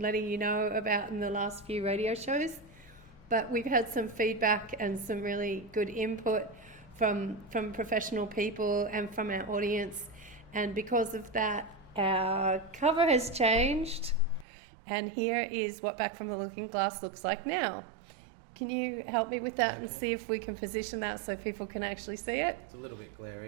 you know about in the last few radio shows. But we've had some feedback and some really good input from professional people and from our audience. And because of that, our cover has changed. And here is what Back from the Looking Glass looks like now. Can you help me with that and see if we can position that so people can actually see it? It's a little bit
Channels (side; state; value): left; drops out; at 14.5 s